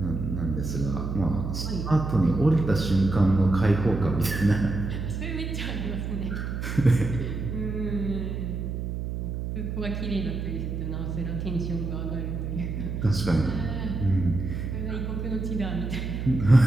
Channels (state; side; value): noise; right; hum, 4 dB below the sound